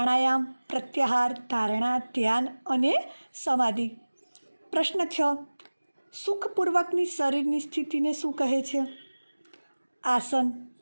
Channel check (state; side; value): inverted; both; correlation -1.00